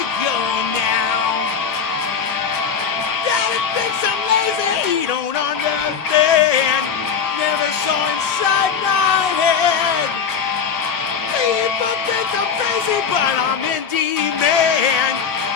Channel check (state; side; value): quieter; right; 6.8 dB